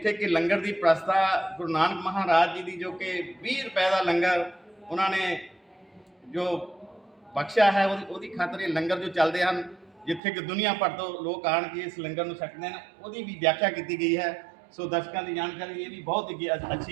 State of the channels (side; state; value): left; drops out; at 10.2 s